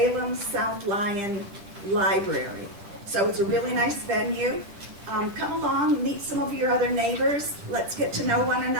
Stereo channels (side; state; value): left; late; 10 ms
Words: South Lyon Library. So it's a really nice venue. Come along, meet some of your other neighbors. Let's get to know one